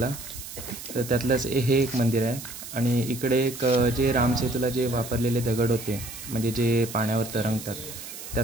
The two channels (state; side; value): noise; right; hiss, 11 dB below the sound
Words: तर त्यातलंच हे एक मंदिर आहे. आणि इकडे एक जे रामसेतूला जे वापरलेले दगड होते, म्हणजे जे पाण्यावर तरंगतात,